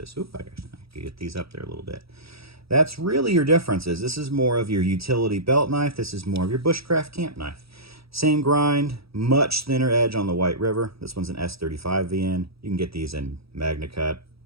Oop, I can get these up there a little bit. That's really your differences. This is more of your utility belt knife. This is more of your bushcraft camp knife. Same grind, much thinner edge on the White River. This one's an S35 VN. You can get these in MagnaCut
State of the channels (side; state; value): left; late; 0.77 ms